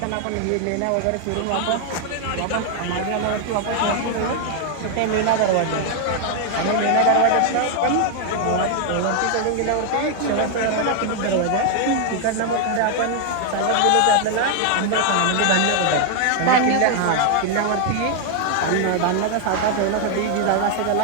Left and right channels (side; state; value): both; different; correlation 0.00